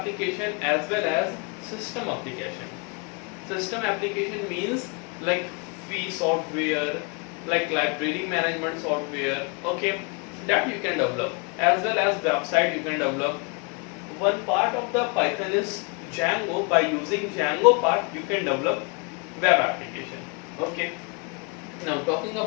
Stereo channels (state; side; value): quieter; right; 31.8 dB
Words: as well as system application. System application means like fee software, like library management software, okay, that you can develop, as well as website you can develop. One part of the Python is Django. By using Django part you can develop web application. Okay, now talking